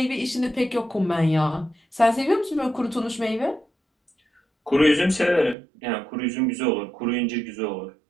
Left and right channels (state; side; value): drops out; left; at 5.6 s